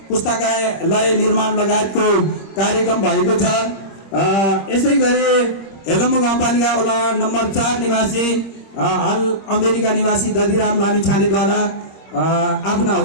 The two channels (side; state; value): right; late; 26 ms